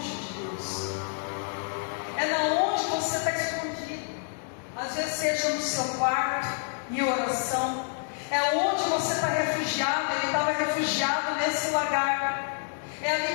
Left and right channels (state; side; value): silent; right; 56 dB below the other